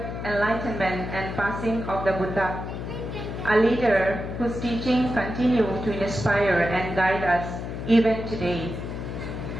enlightenment and passing of the Buddha, a leader whose teachings continue to inspire and guide us even today.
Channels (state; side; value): noise; left; hum, 6 dB below the sound